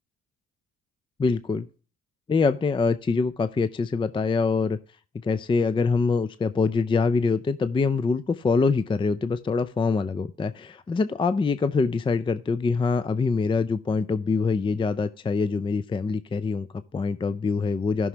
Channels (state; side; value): quieter; right; 4.1 dB